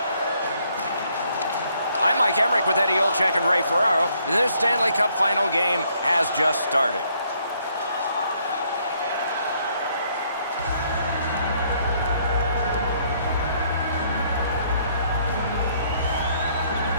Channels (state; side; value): inverted; both; correlation -0.68